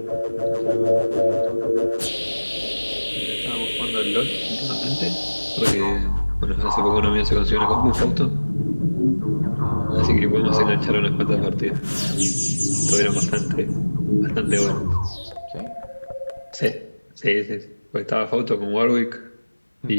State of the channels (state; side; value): inverted; both; correlation -1.00